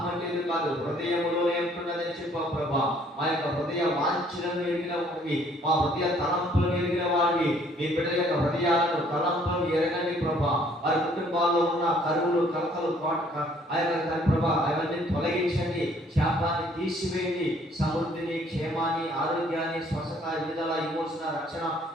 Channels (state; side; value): normal; both; correlation 0.61